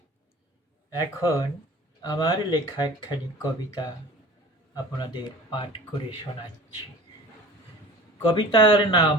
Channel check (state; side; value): normal; both; correlation 0.41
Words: এখন আমার লেখা একখানি কবিতা আপনাদের পাঠ করে শোনাচ্ছি। কবিতার নাম